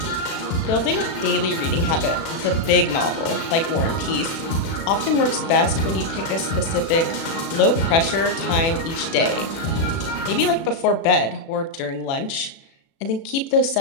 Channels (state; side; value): late; right; 36 ms